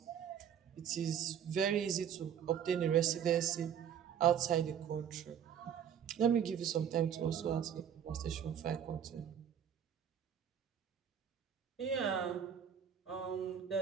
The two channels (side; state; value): left; quieter; 8.7 dB